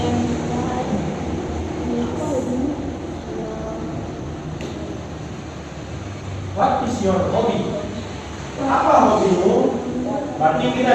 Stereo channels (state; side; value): identical; both; correlation 1.00